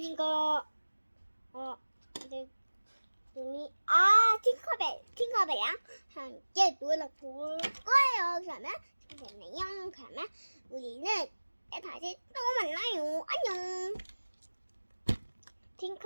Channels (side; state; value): both; inverted; correlation -1.00